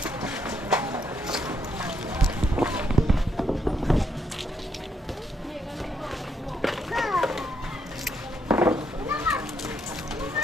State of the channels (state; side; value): normal; both; correlation 0.75